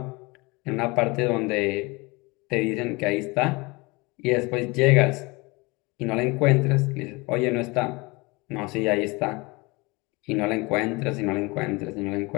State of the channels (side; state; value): right; quieter; 25.6 dB